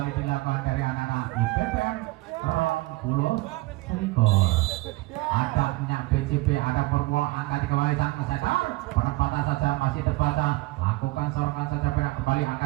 dilakukan dari anak-anak IPBM 20 ada minyak BCB, ada Purwo angkat kembali sang setter. Penempatan saja masih terbaca lakukan sorongan saja perak kembali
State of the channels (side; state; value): left; quieter; 20.9 dB